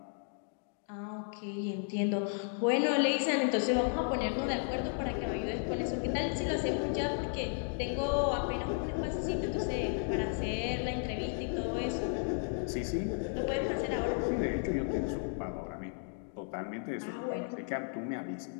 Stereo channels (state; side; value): silent; right; 55 dB below the other